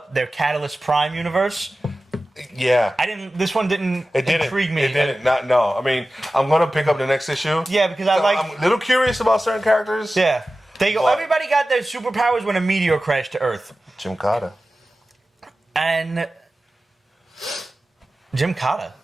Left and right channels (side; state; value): both; normal; correlation 0.95